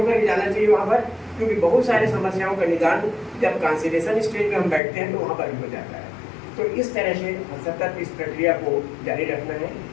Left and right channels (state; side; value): drops out; right; at 4.8 s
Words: ही जाना चाहिए वहाँ पर, क्योंकि बहुत सारी समस्याओं का निदान जब कॉन्सिलेशन स्टेज में हम बैठते हैं तो वहाँ पर भी हो जाता है। तो इस तरह से सतत इस प्रक्रिया को जारी रखना है।